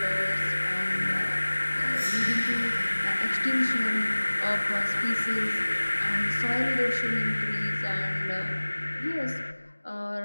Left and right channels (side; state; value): both; inverted; correlation -1.00